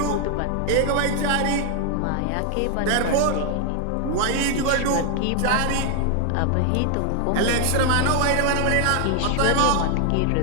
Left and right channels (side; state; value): both; different; correlation 0.00